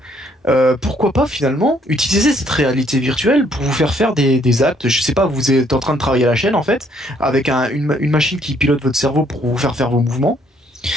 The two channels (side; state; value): both; normal; correlation 0.66